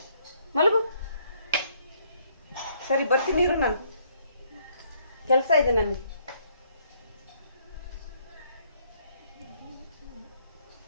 ಮಲಗು. ಸರಿ ಬರ್ತೀನಿ ಇರು, ನಾನು ಕೆಲಸ ಇದೆ ನನಗೆ.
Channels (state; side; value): inverted; both; correlation -0.67